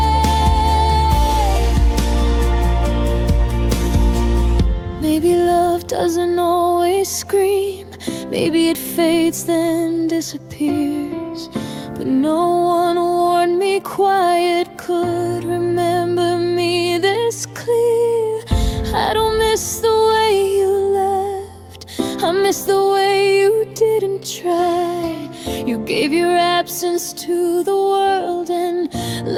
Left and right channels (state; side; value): identical; both; correlation 1.00